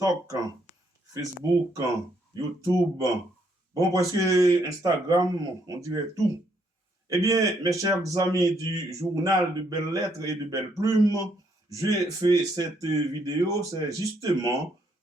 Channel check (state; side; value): normal; both; correlation 0.72